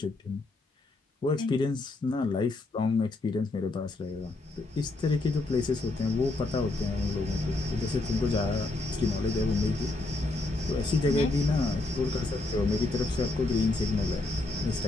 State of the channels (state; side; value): quieter; right; 3.1 dB